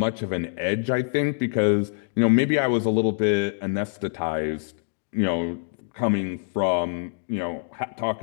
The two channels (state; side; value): silent; right; digital silence